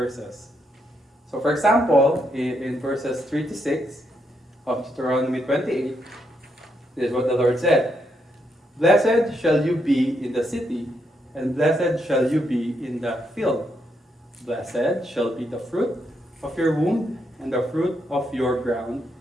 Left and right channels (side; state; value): both; normal; correlation 0.78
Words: So for example, in verses 3 to 6 of Deuteronomy 28, this is what the Lord said. Blessed shall you be in the city, and blessed shall you be in the field. Blessed shall be the fruit of your womb, and the fruit of your ground,